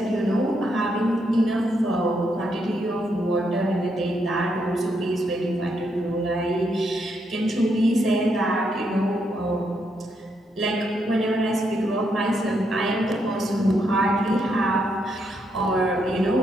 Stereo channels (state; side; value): normal; both; correlation 0.78